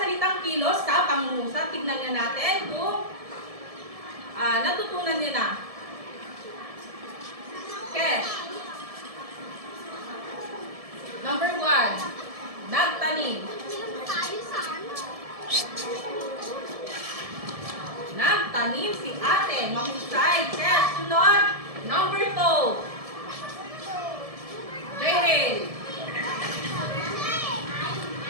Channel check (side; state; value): left; late; 1.7 ms